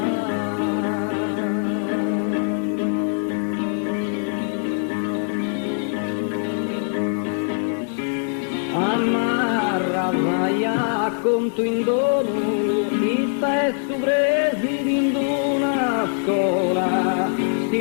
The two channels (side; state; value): right; silent; 64 dB below the other